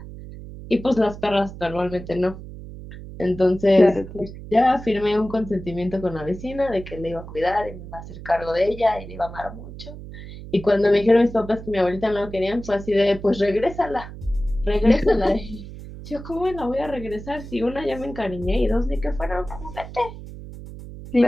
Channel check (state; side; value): noise; right; hum, 13 dB below the sound